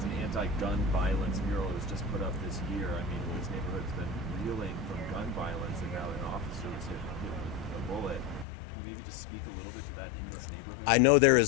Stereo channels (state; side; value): drops out; right; at 8.5 s